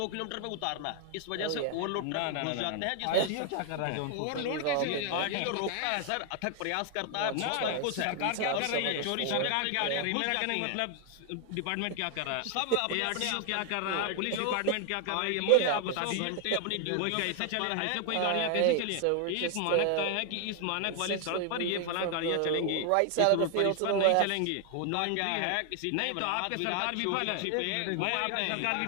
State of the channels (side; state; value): both; different; correlation 0.00